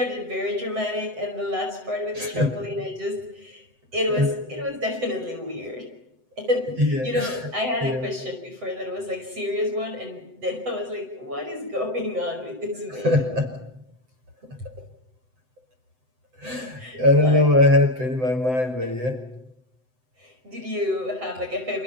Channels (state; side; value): late; left; 7.8 ms